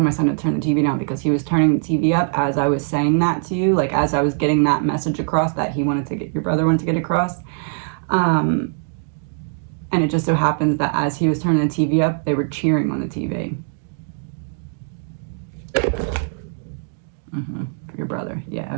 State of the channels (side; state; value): left; silent; 65 dB below the other